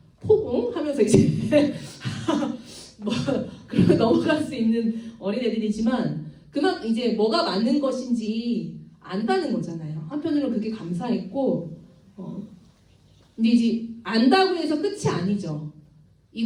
포공? 하면서 이제 뭐 그러면 넘어갈 수 있는 어린애들이지만 그만 이제 뭐가 맞는 것인지 안다는 거잖아요. 한편으로는 그게 감사했고 근데 이제 안다고 해서 끝이 아니죠.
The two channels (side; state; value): both; identical; correlation 1.00